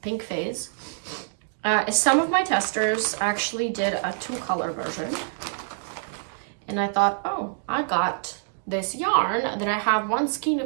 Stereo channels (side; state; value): left; silent; digital silence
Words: pink phase. Some of my testers actually did a 2-color version. And I thought, oh, I got this yarn that I have 1 skein